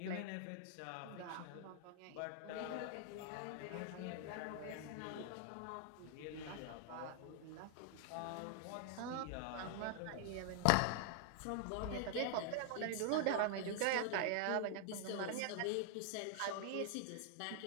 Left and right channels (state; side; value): different; both; correlation 0.00